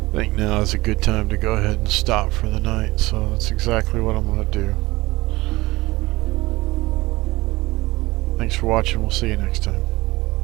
I think now is a good time to go ahead and stop for the night, so that's exactly what I'm going to do. Thanks for watching. We'll see you next time.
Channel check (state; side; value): quieter; left; 20.1 dB